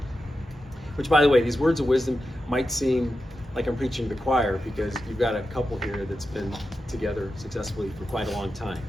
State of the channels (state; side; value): normal; both; correlation 0.90